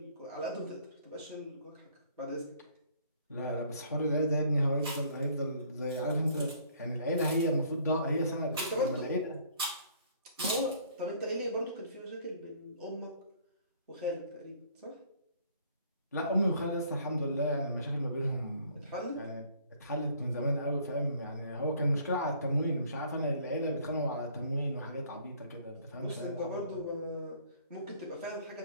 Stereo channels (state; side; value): inverted; both; correlation -0.59